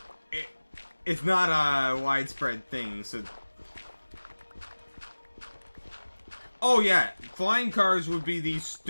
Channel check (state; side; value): inverted; both; correlation -1.00